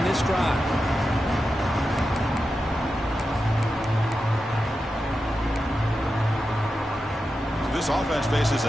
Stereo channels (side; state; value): both; normal; correlation 0.90